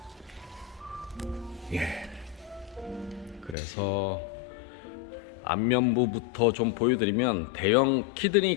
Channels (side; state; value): right; drops out; at 3.6 s